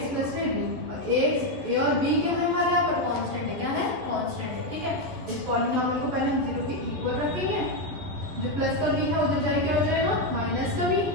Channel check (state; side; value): late; left; 11 ms